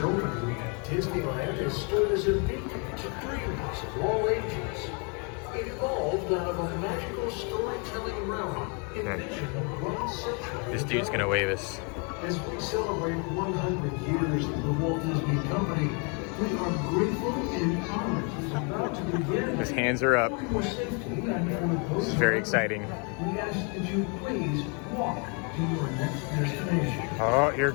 Disneyland has stood as a beacon to dreamers of all ages. It evolved out of a magical storytelling realm envisioned 1 century. This dude's gonna wave us. As we celebrate 100 years of the Walt Disney Company, we are grateful and honored to be about to begin. His hands are up. For your safety and for This is very exciting. we ask that you please walk to your next destination. Oh, here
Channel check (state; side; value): quieter; right; 35.7 dB